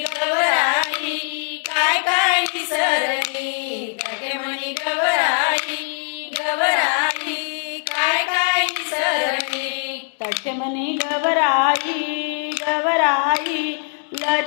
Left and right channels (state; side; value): silent; right; 65 dB below the other